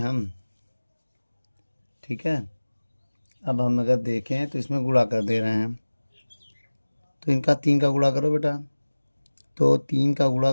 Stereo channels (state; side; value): inverted; both; correlation -1.00